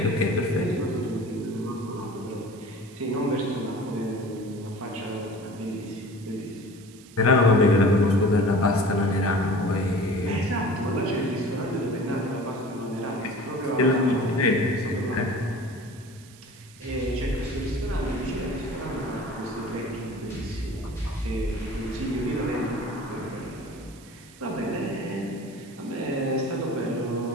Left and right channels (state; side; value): noise; right; hiss, 22 dB below the sound